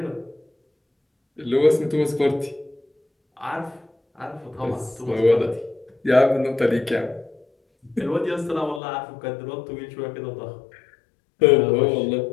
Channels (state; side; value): drops out; right; at 8.8 s